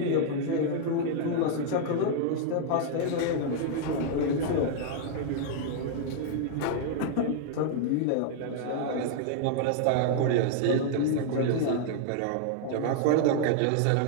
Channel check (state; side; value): different; both; correlation -0.01